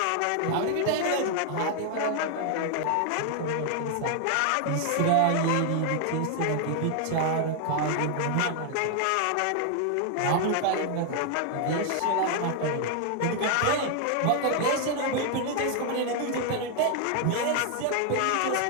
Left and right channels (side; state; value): both; different; correlation 0.00